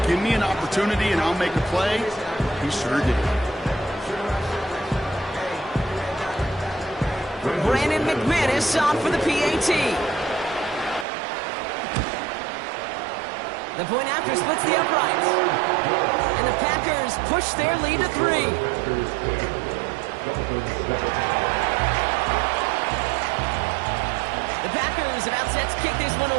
give me an opportunity and I'll make a play. He sure did. Brandon McManus on for the PAT. The point after splits the uprights. And the Packers push their lead to 3. The Packers about set to kick this one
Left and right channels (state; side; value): drops out; left; at 11.1 s